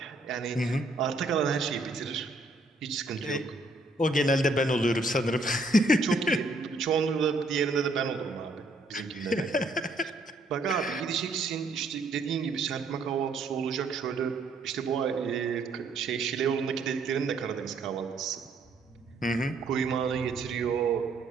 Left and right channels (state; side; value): quieter; left; 3.0 dB